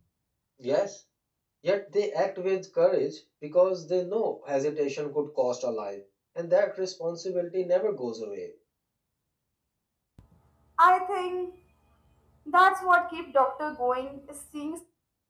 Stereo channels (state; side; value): identical; both; correlation 1.00